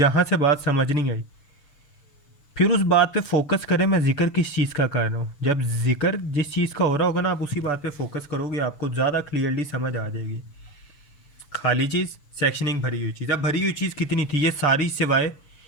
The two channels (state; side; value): late; right; 6.9 ms